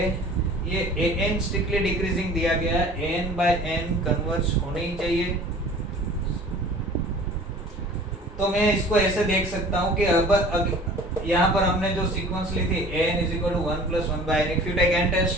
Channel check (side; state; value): both; normal; correlation 0.46